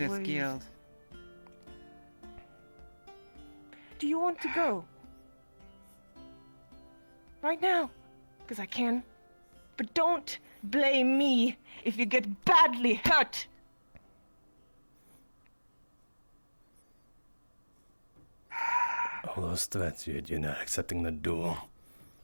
away. guild. Do you want to go? Right now? Because I can. But don't blame me if you get badly hurt. All those threats, you're not accepting the duel.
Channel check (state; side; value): inverted; both; correlation -1.00